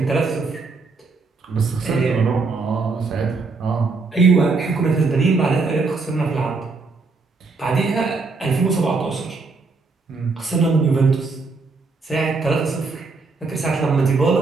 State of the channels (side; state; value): left; quieter; 4.1 dB